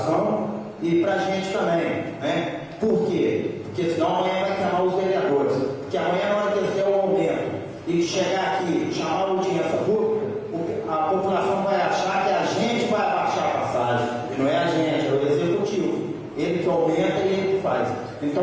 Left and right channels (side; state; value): both; identical; correlation 1.00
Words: e para a gente também, né? Por quê? Porque senão amanhã vai queimar os vereadores. Porque amanhã, na hora que eles der o aumento e chegar aqui, chamar a audiência pública, a população vai achar que a gente vai abaixar a passagem. E não é a gente, é o executivo. Ele que aumenta e ele que faz.